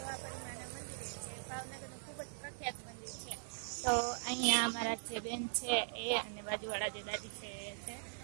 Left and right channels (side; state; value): left; silent; digital silence